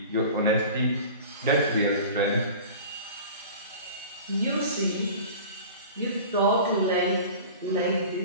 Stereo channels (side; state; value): both; inverted; correlation -0.38